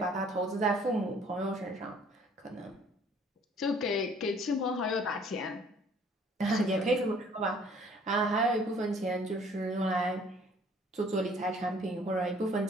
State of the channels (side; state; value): both; normal; correlation 0.57